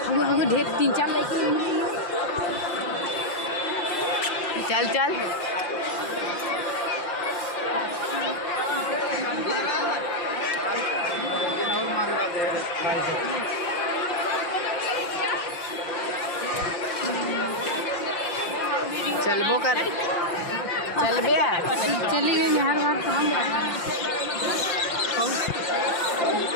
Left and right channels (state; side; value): late; right; 5.7 ms